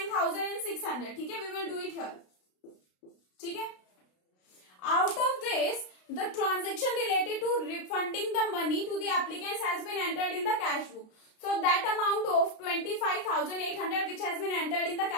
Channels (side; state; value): right; late; 32 ms